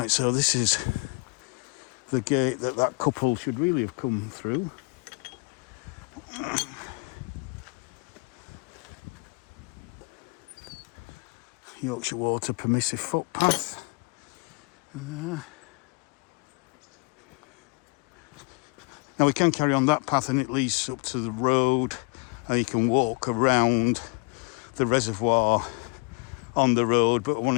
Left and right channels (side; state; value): right; quieter; 32.1 dB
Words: so this is the gate that couple should really have come through. Yorkshire Water permissive footpath. Now we can carry on that path and it leads up to the road, and you can walk around the reservoir on the road, but I want